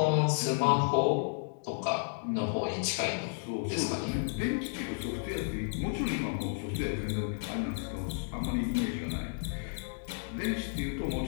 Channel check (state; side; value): silent; right; digital silence